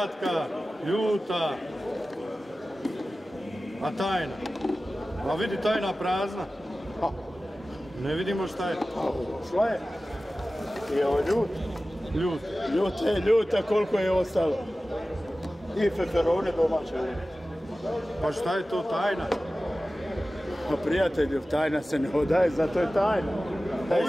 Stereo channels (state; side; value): normal; both; correlation 0.96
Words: ljuta. A tajna? A vidi tajna prazna. Ne vidimo šta je. Šta je? I ovo ljut. Ljut. Ljuta, koliko je ostalo? I feferone domaće. Pa šta je to tajna? Pa prijatelju, tajna se ne odaje, zato je tajna.